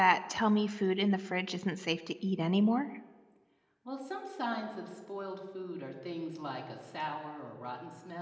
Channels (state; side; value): identical; both; correlation 1.00